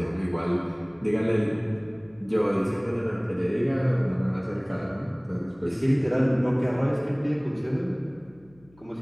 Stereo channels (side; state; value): left; noise; hum, 28 dB below the sound